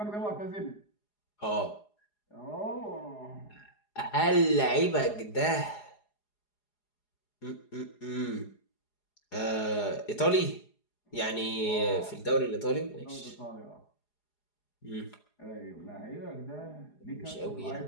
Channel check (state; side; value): late; right; 4.8 ms